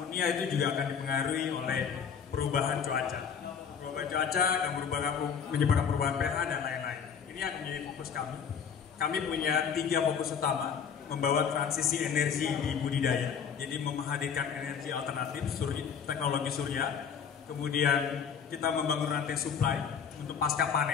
itu juga akan dipengaruhi oleh perubahan cuaca. Perubahan cuaca akan menyebabkan perubahan pH dan lain-lain. Ini yang menjadi fokus kami. Kami punya 3 fokus utama: membawa transisi energi di budidaya, jadi menghadirkan energi alternatif, teknologi surya. Kemudian kita membangun rantai supply untuk pasca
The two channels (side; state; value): right; quieter; 7.0 dB